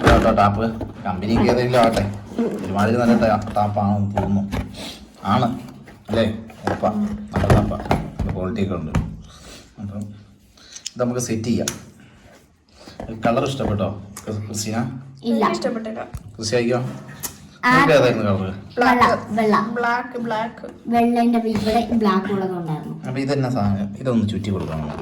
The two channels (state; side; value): identical; both; correlation 1.00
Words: ടാപ്പ് കമ്പനിക്ക് ഏതെങ്കിലും ആവട്ടെ, ഒരുമാതിരി നല്ല ടാപ്പാണെന്ന് തോന്നുന്നു. ആണ് അല്ലേ? ഉറപ്പാ, നല്ല ടാപ്പാ, ക്വാളിറ്റി ഒക്കെ ഉണ്ട്. അപ്പം ഇത് നമുക്ക് സെറ്റ് ചെയ്യാം. കളർ ഇഷ്ടപ്പെട്ടോ ക്രിസ്റ്റീന? ഇല്ല, ഇഷ്ടപ്പെട്ടില്ല. ക്രിസ്റ്റി അയക്കോ? നിങ്ങൾക്ക് ഏതായിരുന്നു കളറ്? അപ്പൊ ഇതെന്നാ സാധനം? ഇതൊന്ന് ചുറ്റി കൊടുക്കണം.